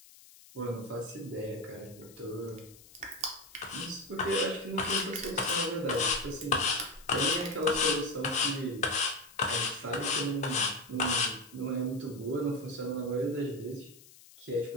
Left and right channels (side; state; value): left; noise; hiss, 22 dB below the sound